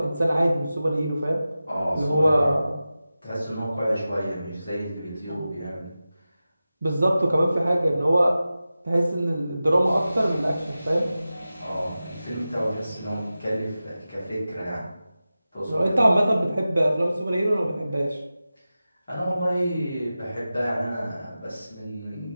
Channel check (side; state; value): both; inverted; correlation -0.94